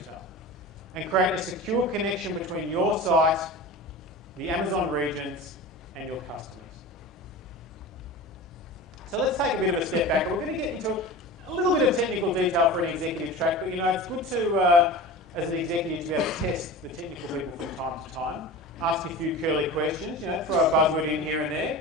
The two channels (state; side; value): normal; both; correlation 0.33